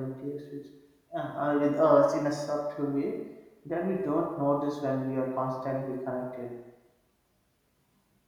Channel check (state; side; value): identical; both; correlation 1.00